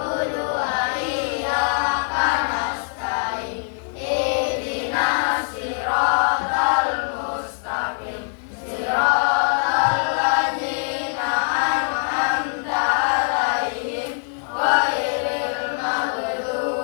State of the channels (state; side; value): silent; right; digital silence